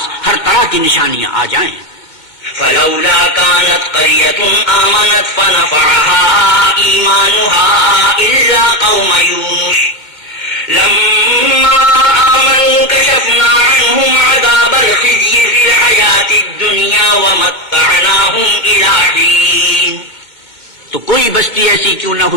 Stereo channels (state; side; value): late; right; 2.2 ms